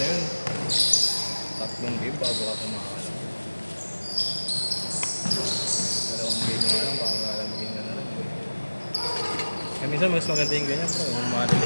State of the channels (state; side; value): inverted; both; correlation -1.00